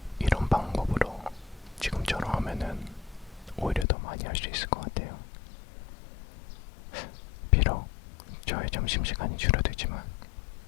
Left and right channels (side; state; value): right; drops out; at 3.9 s